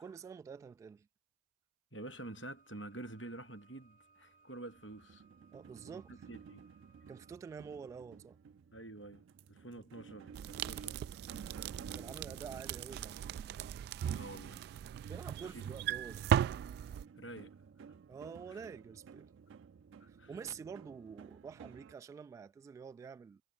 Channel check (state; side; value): quieter; left; 8.0 dB